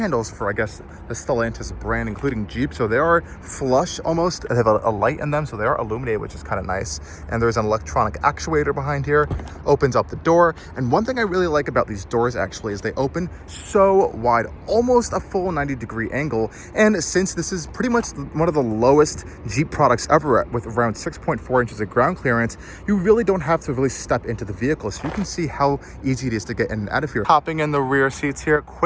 for, I guess, the Stellantis brand, including Jeep. So they are flush almost. They have a light in them, so they are illuminated, which is kind of nice. And there's an electronic actuator behind here. Opens up the door. And one thing I really like about these doors actually is they open so wide, almost a full 90-degree angle. And since this is pretty much one of the lowest Jeep products ever with around 6.4 inches of ground clearance, you really don't have to really step into the vehicle. So you can see how easy it is to get in and out of here. Hopping in the rear seats here,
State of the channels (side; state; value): both; identical; correlation 1.00